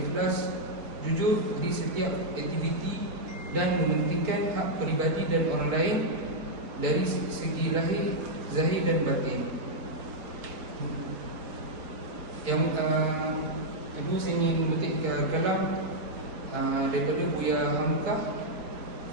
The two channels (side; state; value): left; late; 4.3 ms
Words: jujur di setiap aktiviti dan mementingkan hak peribadi dan orang lain dari segi lahir, zahir dan batin. Yang kedua, saya ingin memetik kalam daripada Buya Hamkah